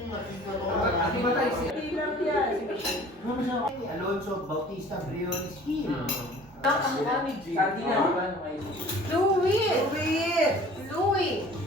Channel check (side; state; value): both; normal; correlation 0.48